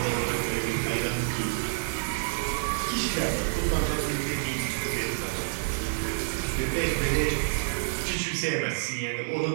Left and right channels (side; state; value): left; silent; digital silence